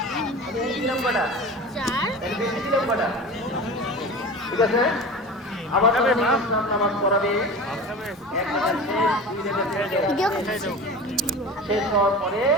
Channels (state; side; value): normal; both; correlation 0.33